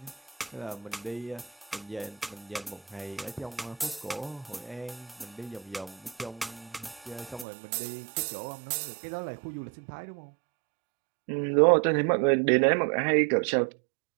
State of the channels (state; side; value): drops out; left; at 7.5 s